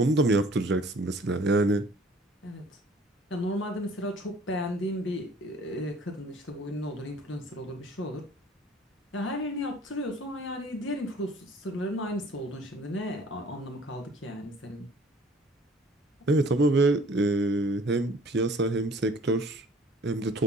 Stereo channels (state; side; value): normal; both; correlation 0.53